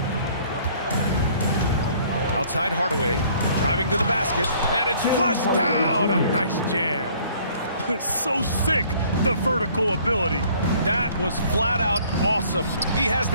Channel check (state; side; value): inverted; both; correlation -0.57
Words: Outside Hardaway, driving to the basket, and it's flushed down. A nice jam. So sick, the vertical ability. That was flat out awesome. He has